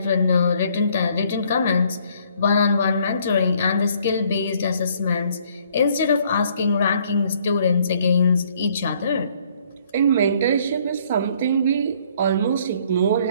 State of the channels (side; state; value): both; inverted; correlation -0.63